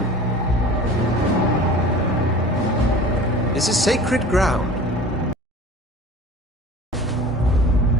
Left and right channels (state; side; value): normal; both; correlation 0.41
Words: This is sacred ground.